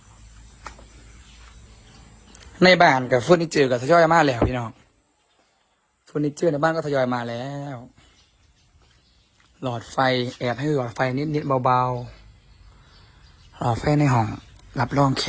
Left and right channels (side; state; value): both; identical; correlation 1.00